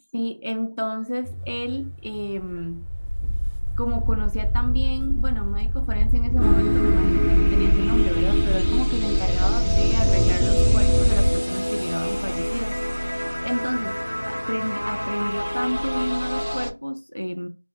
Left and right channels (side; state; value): both; inverted; correlation -1.00